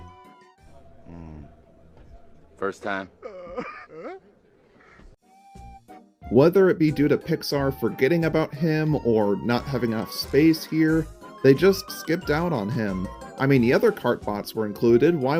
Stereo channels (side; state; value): both; identical; correlation 1.00